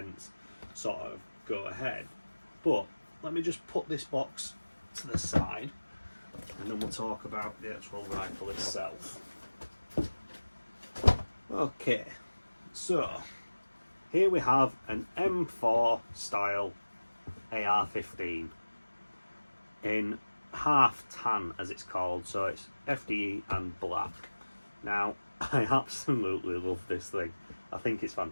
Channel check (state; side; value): inverted; both; correlation -1.00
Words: sort of go ahead. But let me just put this box to the side, and then we'll talk about the actual rifle itself. Okay, so here we have an M4 style AR-15 in half tan, as it's called, so it's FDE and black. Now, I absolutely love this thing. I think it's